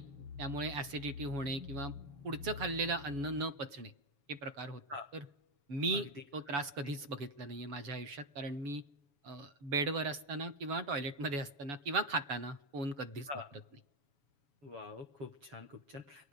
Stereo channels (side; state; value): left; late; 7.1 ms